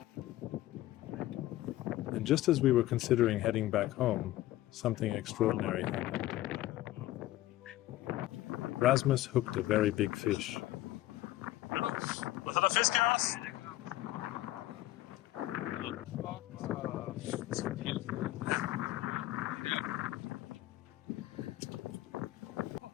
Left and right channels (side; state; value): right; quieter; 15.8 dB